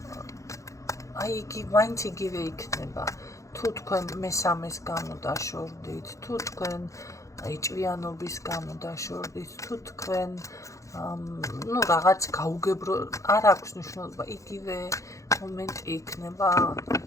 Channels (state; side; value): late; right; 0.15 ms